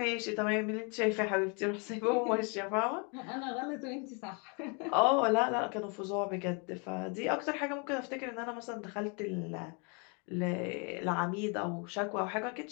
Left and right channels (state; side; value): quieter; right; 34.8 dB